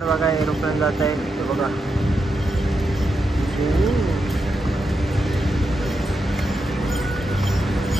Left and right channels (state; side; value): normal; both; correlation 0.85